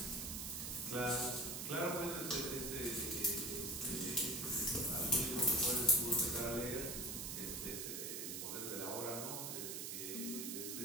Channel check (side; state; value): right; noise; hiss, 4 dB below the sound